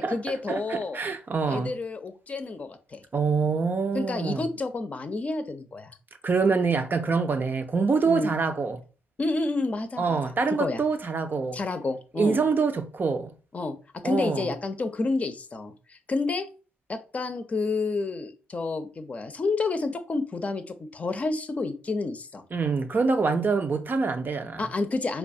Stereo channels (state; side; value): normal; both; correlation 0.80